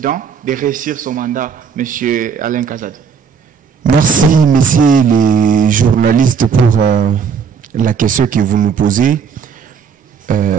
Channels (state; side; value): quieter; left; 6.4 dB